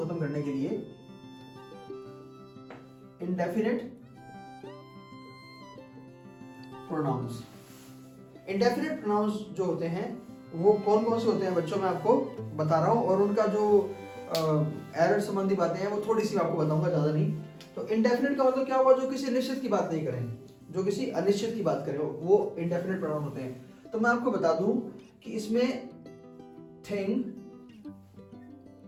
खत्म करने के लिए इंडेफिनिट प्रोनाउंस। इंडेफिनिट प्रोनाउंस जो होते हैं वो कौन कौन से होते हैं बच्चों, मैं आपको बता रहा हूं, और उनका जो एरर संबंधी बातें हैं वो थोड़ी सी आपको बताऊंगा, ज्यादा नहीं। तो इंडेफिनिट का मतलब क्या हुआ, जो किसी निश्चित की बात नहीं करें, जो किसी अनिश्चित की बात करें, वो इंडेफिनिट प्रोनाउन होते हैं। तो मैं आपको बता दूं कि इसमें thing,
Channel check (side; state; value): both; identical; correlation 1.00